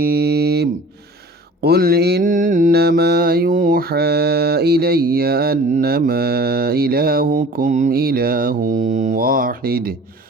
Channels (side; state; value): both; normal; correlation 0.45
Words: قل إنما يوحى إلي أنما إلهكم إله واحد